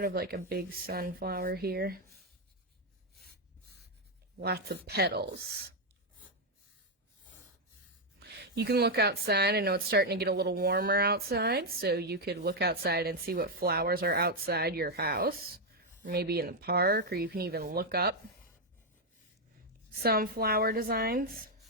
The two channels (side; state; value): both; normal; correlation 0.01